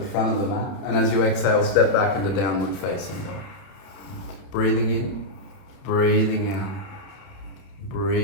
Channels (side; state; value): right; late; 30 ms